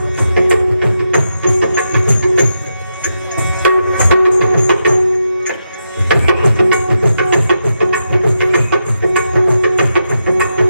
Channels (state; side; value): inverted; both; correlation -0.86